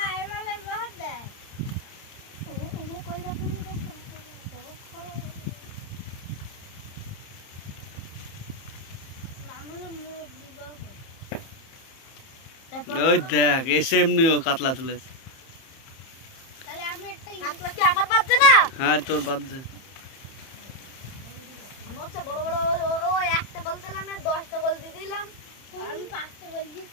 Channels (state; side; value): late; right; 30 ms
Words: মেলে বহুত দেয় ও কই রাখো নি দেখো ওই দেখ এসে এমনিও কাতলা তুলেছে। তাহলে আমি একটা কাতলা কি আমার বাজছে না? হ্যাঁ তোর বাজছে। আমি হচ্ছে বড় বড় ও একটা গোল দিলাম না 10টা গোল দিয়ে দিলাম। আমি 5টা গোল